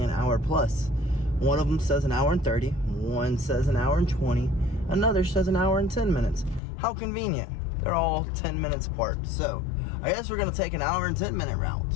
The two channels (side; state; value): right; drops out; at 6.6 s